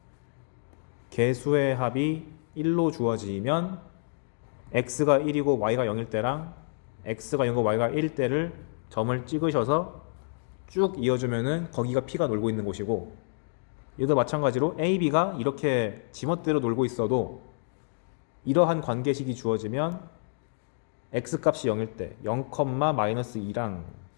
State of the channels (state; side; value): silent; right; digital silence